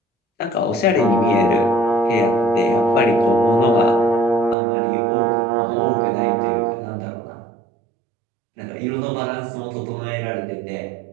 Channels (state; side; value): drops out; left; at 4.5 s